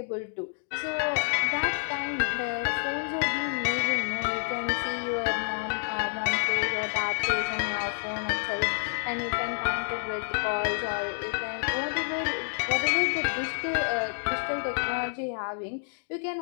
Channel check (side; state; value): right; silent; digital silence